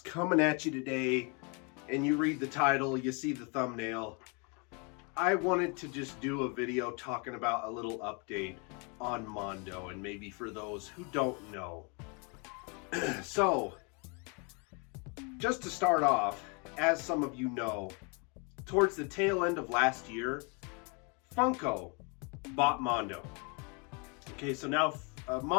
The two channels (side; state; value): right; quieter; 33.5 dB